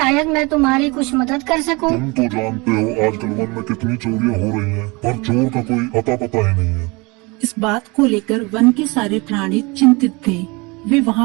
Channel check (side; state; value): left; quieter; 26.4 dB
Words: मैं तुम्हारी कुछ मदद कर सकूं। तुम तो जानते हो आजकल वन में कितनी चोरियां हो रही हैं, पर चोर का कोई अता पता ही नहीं है। इस बात को लेकर वन के सारे प्राणी चिंतित थे। वे